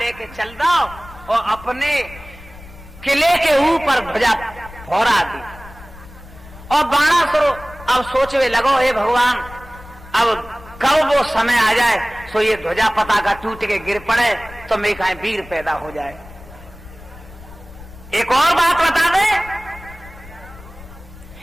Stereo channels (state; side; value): noise; left; rumble, 18 dB below the sound